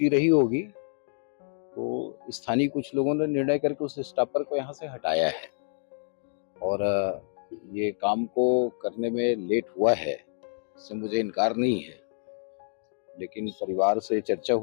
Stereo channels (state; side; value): silent; right; digital silence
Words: रही होगी तो स्थानीय कुछ लोगों ने निर्णय करके उस स्टॉपर को यहाँ से हटाया है और ये काम को करने में लेट हुआ है, इससे मुझे इनकार नहीं है, लेकिन परिवार से चर्चा